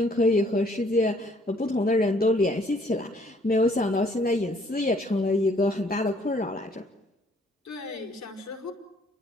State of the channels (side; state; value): both; normal; correlation 0.63